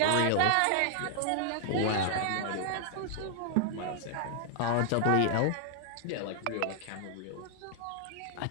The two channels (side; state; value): both; different; correlation 0.00